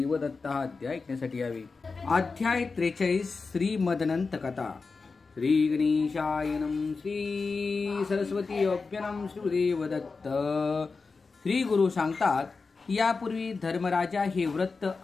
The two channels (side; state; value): right; quieter; 4.4 dB